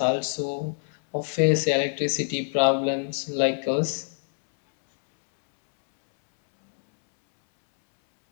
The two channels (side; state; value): right; silent; 62 dB below the other